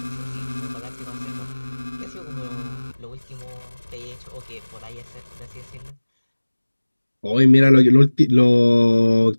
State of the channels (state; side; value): inverted; both; correlation -1.00